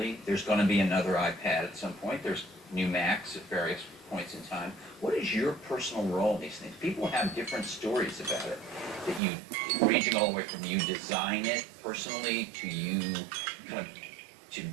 There's going to be another iPad at some point. There's new Macs at various points in time. What is your personal role in these things? People have different stories about it. That you, ranging all the way from you design it personally to you kind of, to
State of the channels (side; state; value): left; drops out; at 9.2 s